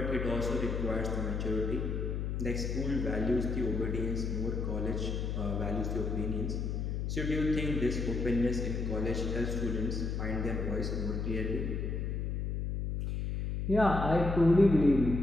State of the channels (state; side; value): noise; left; hum, 2 dB below the sound